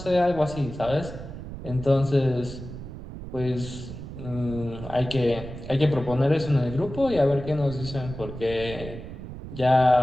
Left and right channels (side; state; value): right; noise; rumble, 11 dB below the sound